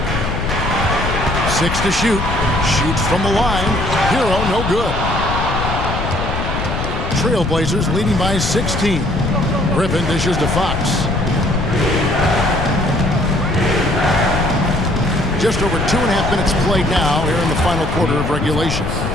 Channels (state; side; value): noise; left; rumble, 3 dB below the sound